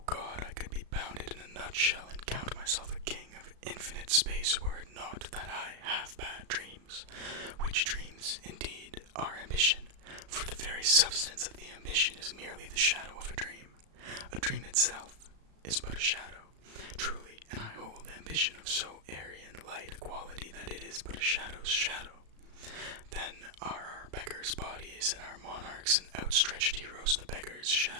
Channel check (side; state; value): left; late; 35 ms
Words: God, I could be bounded in a nutshell and count myself a king of infinite space were it not that I have bad dreams, which dreams, indeed, are ambition, for the very substance of the ambition is merely the shadow of a dream. A dream itself is but a shadow, truly, and I hold ambition of so airy and light a quality that it is but a shadow's shadow. Then are our beggars' bodies and our monarchs and outstretched heroes the beggars'